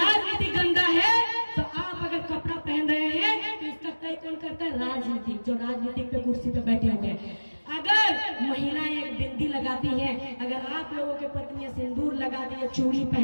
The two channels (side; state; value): both; inverted; correlation -1.00